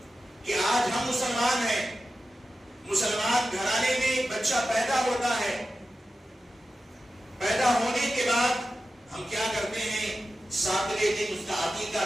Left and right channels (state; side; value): normal; both; correlation 0.93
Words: کہ آج ہم مسلمان ہیں، مسلمان گھرانے میں ایک بچہ پیدا ہوتا ہے، پیدا ہونے کے بعد ہم کیا کرتے ہیں، ساتویں دن اس کا عقیقہ